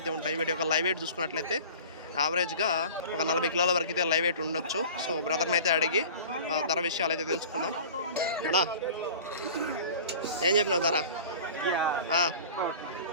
అయితే ఉంటాయి. వీటి యొక్క లైవ్ వెయిట్ చూసుకున్నట్లయితే యావరేజ్గా ఒక 40 కిలోల వరకు అయితే లైవ్ వెయిట్ ఉండొచ్చు. సో బ్రదర్ని అయితే అడిగి ధర విషయాలు అయితే తెలుసుకుందాం. అలా ఏం చెప్పినావు ధర?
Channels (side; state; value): both; inverted; correlation -0.41